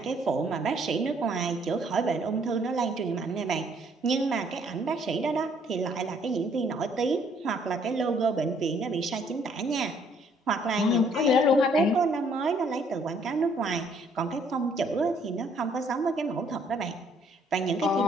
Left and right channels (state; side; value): normal; both; correlation 0.64